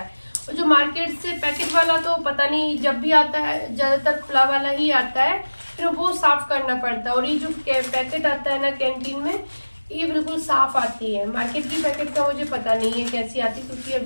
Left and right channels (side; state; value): both; inverted; correlation -1.00